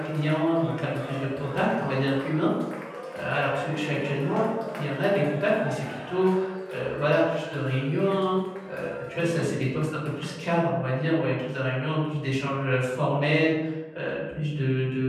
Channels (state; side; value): identical; both; correlation 1.00